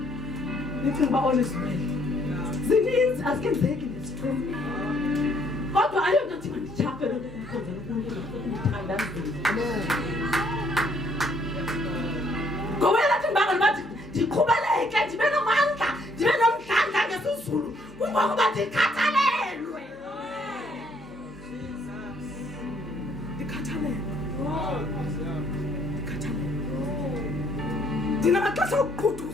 Nithi ngiba honest well. Zininzi azikenzeki nesiqini. Kodwa ayonto athi mandichafe lo nto kumkhonzela uNkulunkulu ngokundithandazela. Ngoba lathi ngibanga bathi ndiqhubeleke ndibe nomandla, ndibe nomdlandla ngesizulu. Kungokuba ndikhathalelwe. Ndikhathalelwe. Ndinamaxesha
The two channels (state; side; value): normal; both; correlation 0.66